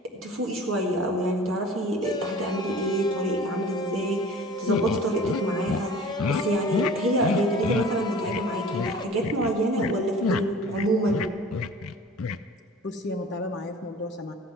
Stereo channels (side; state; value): both; normal; correlation 0.44